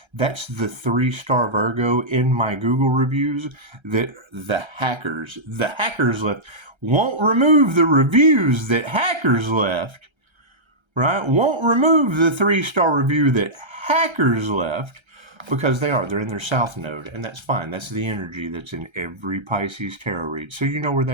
That's the 3-star Virgo in my Google reviews that the hackers left. Won't remove the reviews that hackers left, right? Won't remove the 3-star review that hackers left. Because they're in their south node, and that's fine. That's the energy that's in every Pisces tarot read. So you know where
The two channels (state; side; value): late; left; 1.3 ms